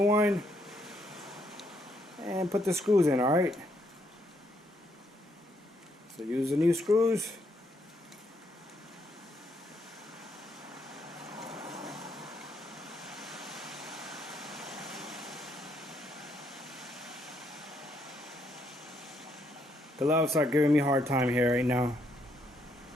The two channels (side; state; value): both; normal; correlation 0.74